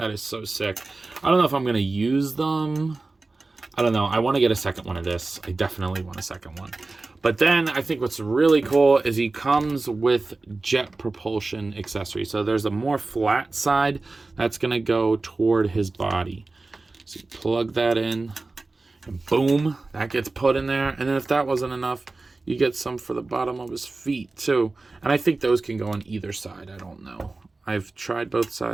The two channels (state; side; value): quieter; left; 3.4 dB